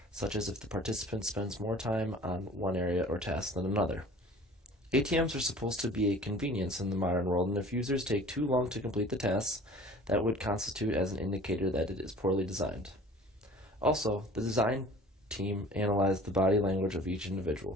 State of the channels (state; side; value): normal; both; correlation 0.46